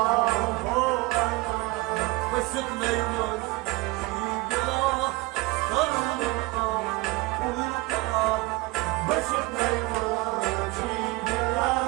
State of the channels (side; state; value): left; quieter; 22.8 dB